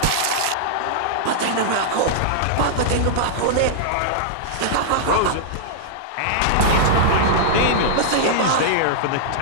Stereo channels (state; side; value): different; both; correlation -0.02